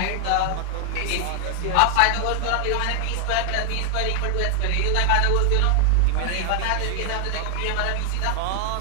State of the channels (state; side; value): different; both; correlation 0.00